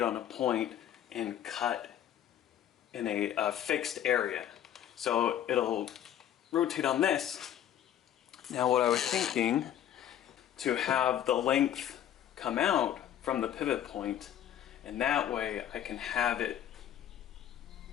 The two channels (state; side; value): quieter; right; 10.8 dB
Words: on a point and cut in a fixed area. So it'll rotate on this. Now what I was thinking, to have the length come out from the pivot point, and that way I can have it